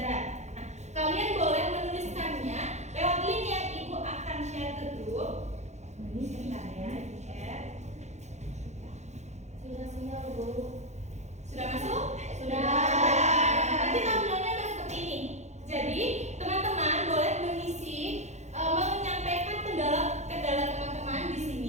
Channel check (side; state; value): left; late; 0.33 ms